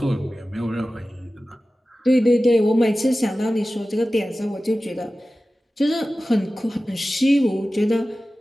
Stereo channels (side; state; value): both; normal; correlation 0.95